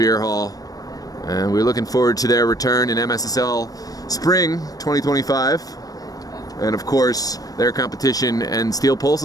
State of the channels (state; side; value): late; right; 0.18 ms